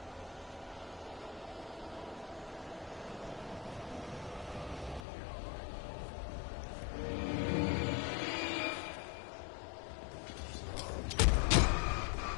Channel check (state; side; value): drops out; right; at 5.0 s